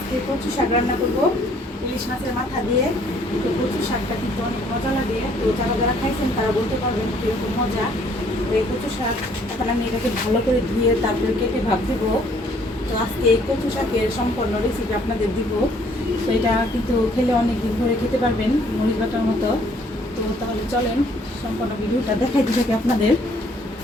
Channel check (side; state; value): both; normal; correlation 0.62